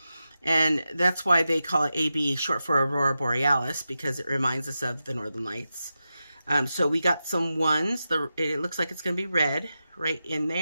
And that's why they call it AB, short for Aurora Borealis, because it reminds us of the Northern Lights. So we got some ones. It looks like it's going to be red right in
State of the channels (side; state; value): both; inverted; correlation -0.90